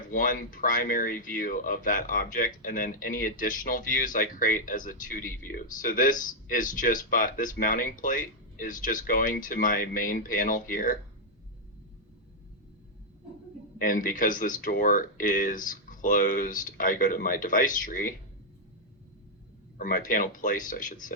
one primary view of that object, and then any additional views I create as a 2D view. So this is just this mounting plate is just going to my main panel here, And because this door is closed, I go to my device tree, or my panel placed, I should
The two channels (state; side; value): normal; both; correlation -0.03